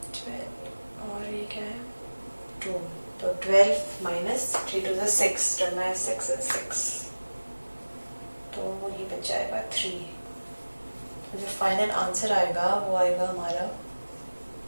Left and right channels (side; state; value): both; inverted; correlation -1.00